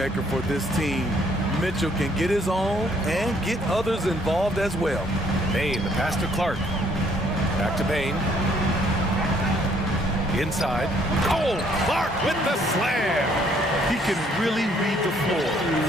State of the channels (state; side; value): normal; both; correlation 0.65